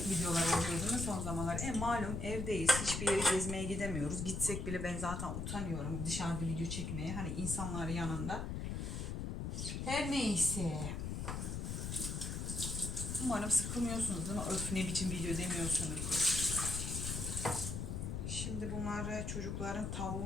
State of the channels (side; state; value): left; noise; rumble, 3 dB below the sound